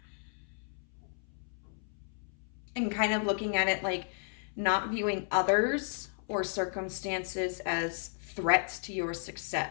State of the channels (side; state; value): right; silent; 55 dB below the other